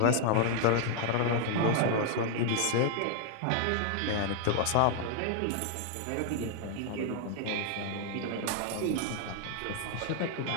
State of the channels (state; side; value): different; both; correlation 0.00